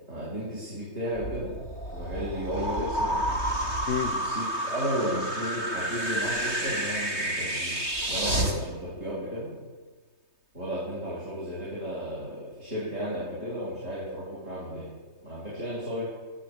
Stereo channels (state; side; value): late; right; 3.2 ms